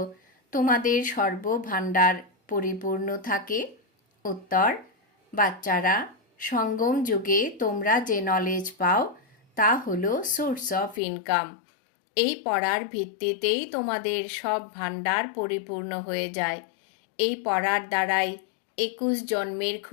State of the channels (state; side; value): drops out; right; at 11.0 s